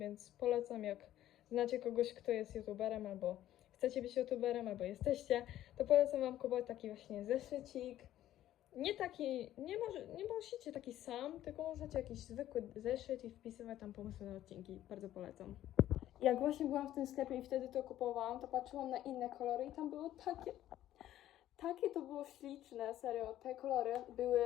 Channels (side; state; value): right; quieter; 12.9 dB